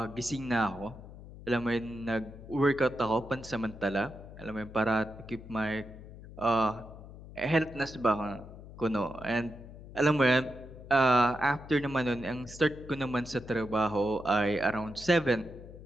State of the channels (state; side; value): noise; left; hum, 16 dB below the sound